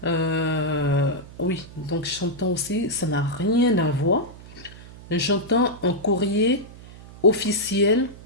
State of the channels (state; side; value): noise; right; hum, 18 dB below the sound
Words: Oui, donc j'entends aussi, ça n'a rien à voir. J'entends un courrier officiel,